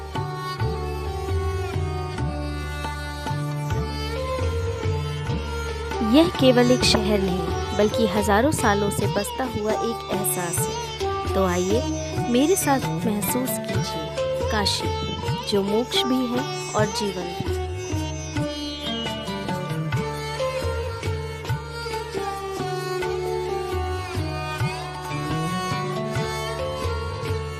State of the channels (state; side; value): identical; both; correlation 1.00